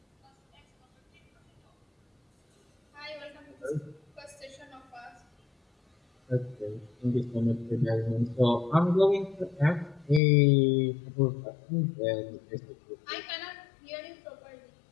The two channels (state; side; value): drops out; right; at 10.2 s